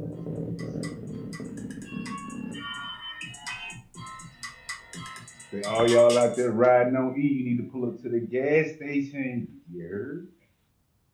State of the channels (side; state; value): both; identical; correlation 1.00